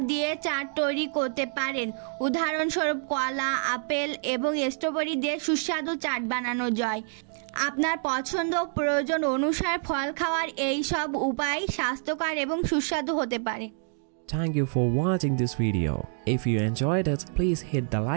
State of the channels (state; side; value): silent; left; 60 dB below the other